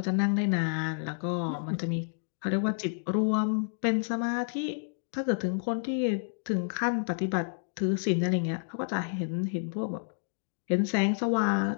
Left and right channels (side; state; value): right; silent; digital silence